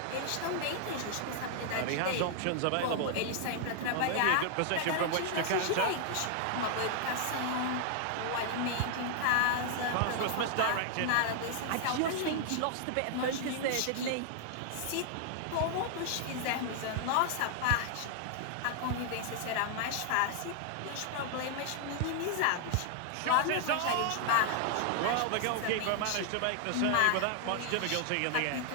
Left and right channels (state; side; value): different; both; correlation 0.00